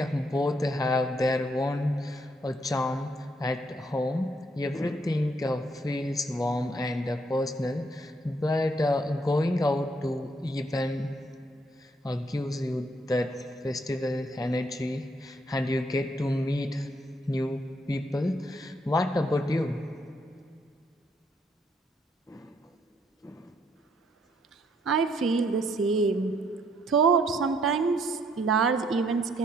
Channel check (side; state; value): both; normal; correlation 0.70